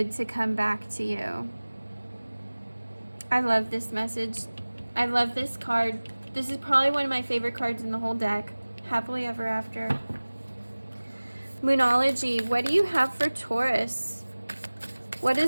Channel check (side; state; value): both; inverted; correlation -1.00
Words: to come back to you. I love this message. I love this card. This is probably one of my favorite cards in the whole deck. Happily ever after. Moonology. What do you have for Taurus? What